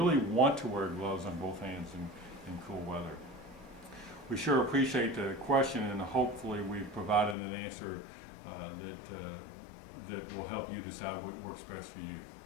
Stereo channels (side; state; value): right; drops out; at 7.4 s